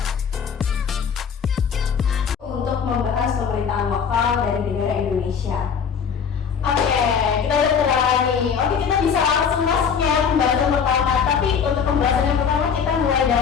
untuk membahas pemerintahan lokal dari negara Indonesia. Oke, kita udah kenalan nih. Oke, kita bisa langsung masuk ya pembahasan pertama. Tapi untuk pembahasan yang pertama kita mulai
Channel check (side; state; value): right; quieter; 6.9 dB